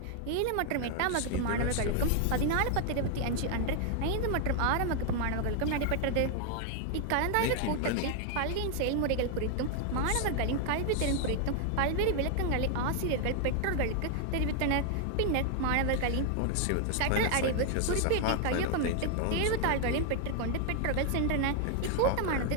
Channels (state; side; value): different; both; correlation 0.00